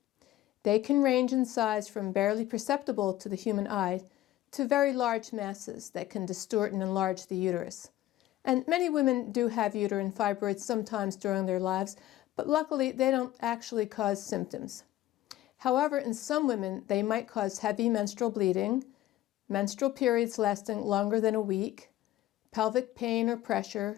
They can range in size from barely perceptible to the human eye to very large masses that can distort and enlarge the uterus. And many women do have uterine fibroids sometimes during their lives, but luckily they don't actually cause symptoms. However, in some women, they might cause heavy menstrual bleeding, menstrual periods lasting longer than a week, pelvic pain or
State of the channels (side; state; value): right; quieter; 14.5 dB